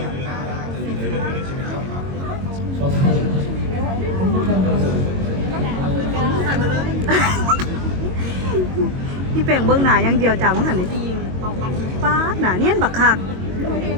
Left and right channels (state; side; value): late; left; 22 ms